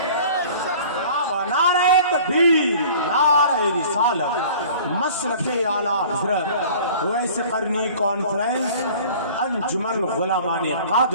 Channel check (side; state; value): both; inverted; correlation -0.46